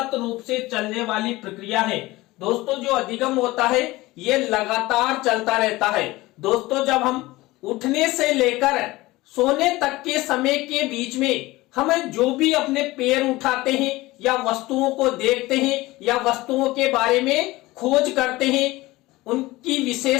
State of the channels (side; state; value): right; quieter; 19.6 dB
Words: रूप से चलने वाली प्रक्रिया है। दोस्तों, जो अधिगम होता है ये लगातार चलता रहता है। दोस्तों, जब हम उठने से लेकर सोने तक के समय के बीच में हम जो भी अपने पैर उठाते हैं या वस्तुओं को देखते हैं या वस्तुओं के बारे में खोज करते हैं, उनकी